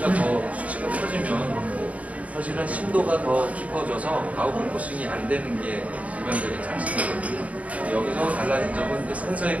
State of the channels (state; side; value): late; left; 0.068 ms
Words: 커지면 사실은 심도가 더 깊어져서 아웃포커싱이 안 되는 게 일반적인 상식이거든요. 여기서 달라진 점은